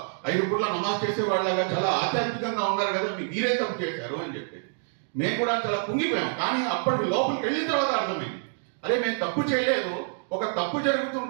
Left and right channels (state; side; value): silent; left; digital silence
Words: 5 పూట్ల నమాజ్ చేసే వాళ్ళగా చాలా ఆధ్యాత్మికంగా ఉన్నారు కదా, మీరే తప్పు చేశారు అని చెప్పేసి మేము కూడా చాలా కుంగిపోయాం. కానీ అప్పటికి లోపలికి వెళ్ళిన తర్వాత అర్థమైంది, అరే మేము తప్పు చేయలేదు, ఒక తప్పు